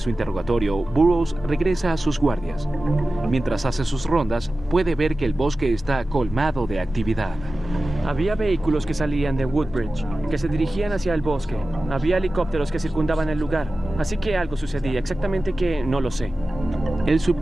interrogatorio, Burroughs regresa a sus guardias. Mientras hace sus rondas, puede ver que el bosque está colmado de actividad. Había vehículos que salían de Woodbridge, que se dirigían hacia el bosque. Había helicópteros que circundaban el lugar. Así que algo sucedía, exactamente qué, no lo sé. El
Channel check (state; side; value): normal; both; correlation 0.95